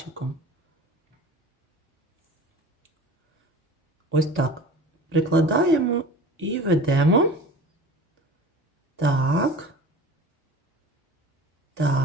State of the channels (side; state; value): both; normal; correlation 0.39